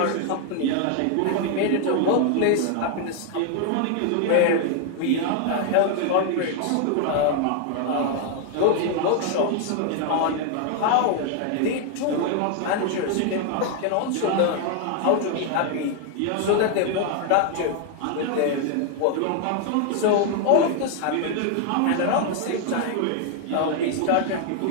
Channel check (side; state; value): both; different; correlation 0.00